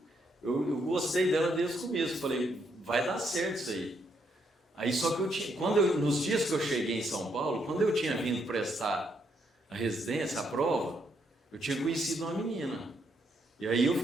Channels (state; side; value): normal; both; correlation 0.75